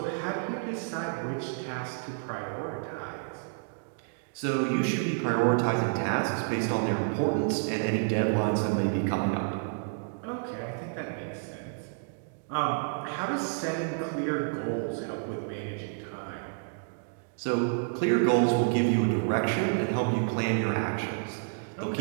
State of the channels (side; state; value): left; silent; digital silence